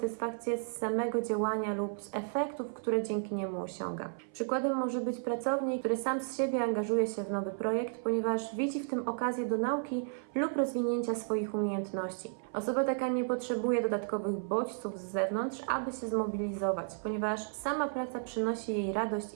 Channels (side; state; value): left; silent; 56 dB below the other